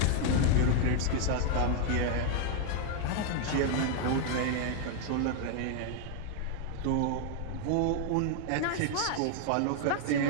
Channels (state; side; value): different; both; correlation 0.00